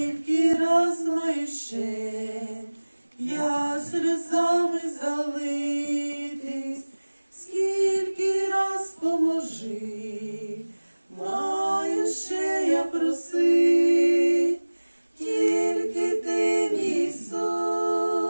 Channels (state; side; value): inverted; both; correlation -1.00